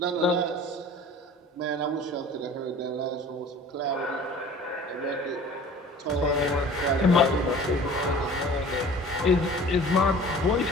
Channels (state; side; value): normal; both; correlation 0.44